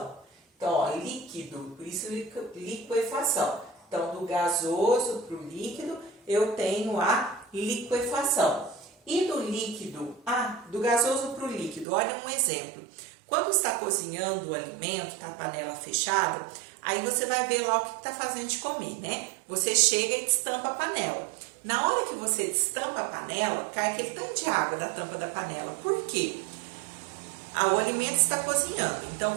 Então, ó, líquido, por isso liquefação. Então, do gasoso para o líquido, eu tenho a liquefação. E do líquido, do gasoso para o líquido, olha um exemplo. Quando está cozinhando o alimento, tá a panela fechada, aí você vai ver lá o que está fazendo de comer, né? Você chega e destampa a panela. Na hora que você destampa a panela, cai aquele tanto de água da tampa da panela. Por quê? O alimento está cozinhando.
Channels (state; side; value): drops out; left; at 11.9 s